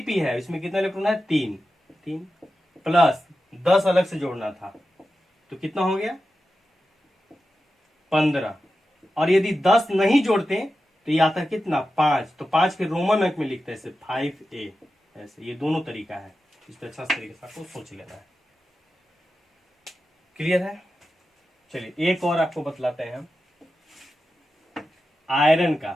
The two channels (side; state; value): both; normal; correlation 0.92